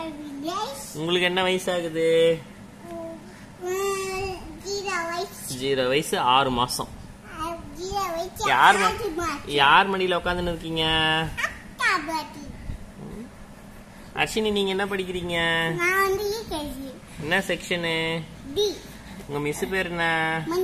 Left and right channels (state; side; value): identical; both; correlation 1.00